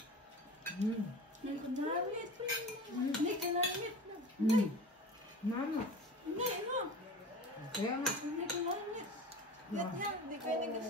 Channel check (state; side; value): normal; both; correlation 0.35